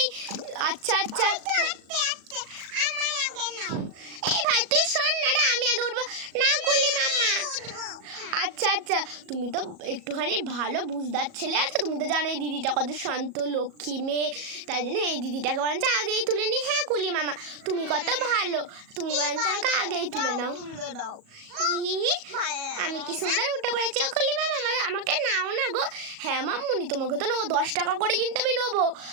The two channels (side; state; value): left; late; 37 ms